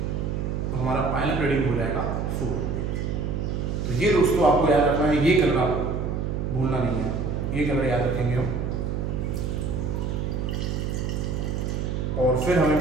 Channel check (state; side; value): noise; right; hum, 1 dB below the sound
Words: तो हमारा पायलट रीडिंग हो जाएगा 4। तो ये दोस्तों आपको याद रखना है, ये कलर आप भूलना नहीं है, आपको ये कलर याद रखेंगे हम। और फिर हमें